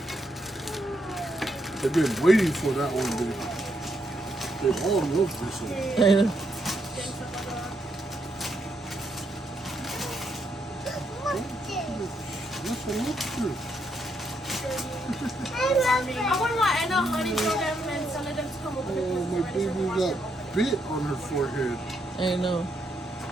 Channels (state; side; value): normal; both; correlation 0.78